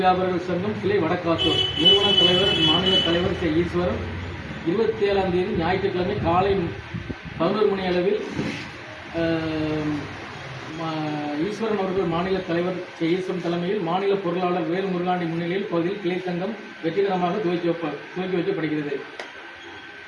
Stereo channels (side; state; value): both; identical; correlation 1.00